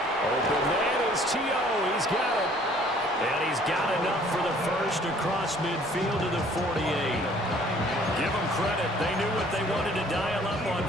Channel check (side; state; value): both; normal; correlation 0.56